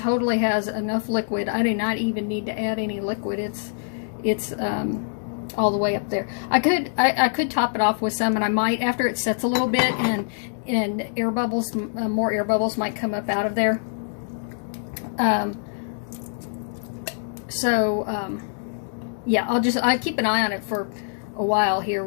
has enough liquid. I do not even need to add any liquid. It's all the way up there. I could top it off with some, and I might after it sets a little bit, and air bubbles, more air bubbles might come up out of there. Yeah, I keep an eye on it for a while here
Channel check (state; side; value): silent; right; digital silence